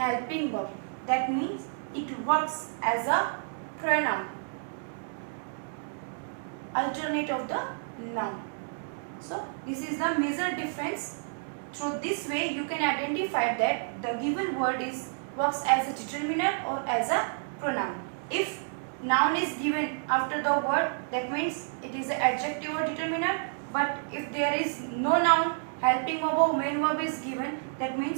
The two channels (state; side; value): silent; left; digital silence